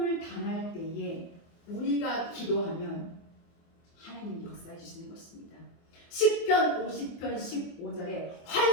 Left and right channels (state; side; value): late; right; 24 ms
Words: 당할 때에 우리가 기도하면 하나님이 역사해 주시는 것입니다. 시편 50편 15절에